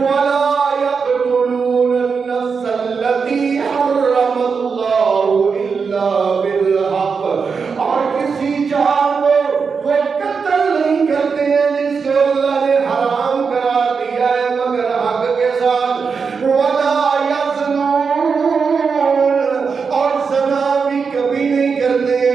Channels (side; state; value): left; quieter; 5.5 dB